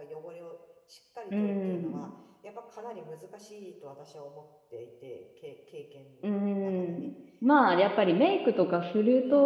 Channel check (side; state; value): both; identical; correlation 1.00